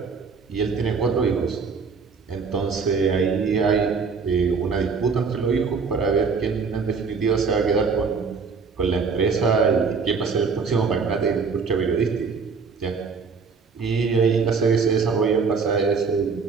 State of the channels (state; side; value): quieter; left; 5.2 dB